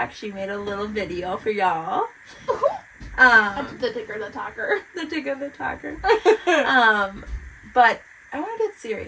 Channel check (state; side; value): identical; both; correlation 1.00